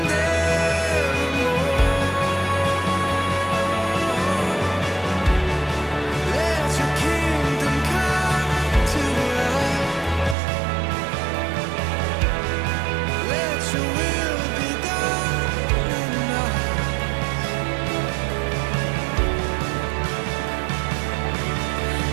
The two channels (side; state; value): left; drops out; at 10.4 s